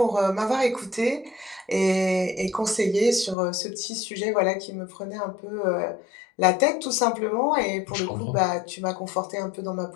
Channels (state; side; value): drops out; right; at 3.4 s